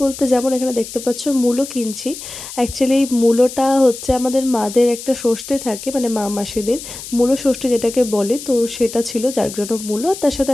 বলতে যেমন এখানে দেখতে পাচ্ছ মূলো কিনছি। অ্যাকচুয়ালি এই মূলোটা হচ্ছে আমাদের মাদের একটা ষষ্ঠী থাকে, মানে মা মাসিদের মূলো ষষ্ঠী যেটাকে বলে, তো সেটা ছিল যার জন্য মূলো, আর তার সাথে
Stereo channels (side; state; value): left; noise; hiss, 11 dB below the sound